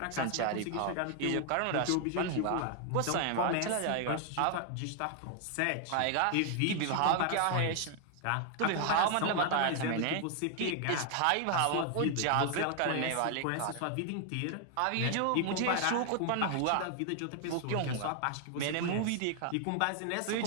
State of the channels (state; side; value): different; both; correlation 0.00